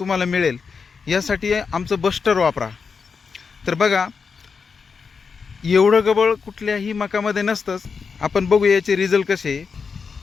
मिळेल, यासाठी आमचं बस्टर वापरा. तर बघा, एवढं गबळ कुठल्याही मकामध्ये नसतंच. आपण बघू याचे रिझल्ट कसे.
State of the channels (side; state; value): right; quieter; 5.5 dB